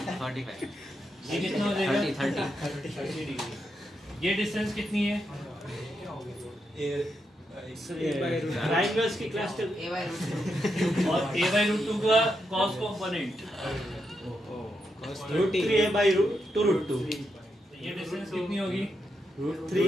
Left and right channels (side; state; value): both; normal; correlation 0.83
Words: ये कितना हो जाएगा 30 डिग्री। ये डिस्टेंस कितनी है ट्रायंगल्स की क्लास टेबल A/√2 और A/√2 का cos कंपोनेंट √3A/√2 ये डिस्टेंस कितनी होगी